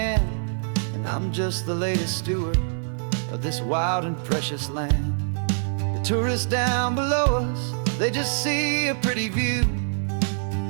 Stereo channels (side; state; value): left; silent; digital silence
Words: and I'm just the latest steward of this wild and precious land. The tourists down below us, they just see a pretty view.